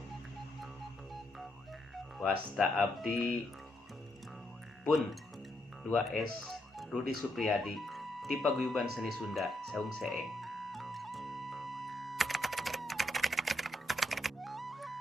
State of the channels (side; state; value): both; normal; correlation 0.78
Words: wasta abdi pun 2S Rudi Supriyadi ti Paguyuban Seni Sunda Saung Seeng.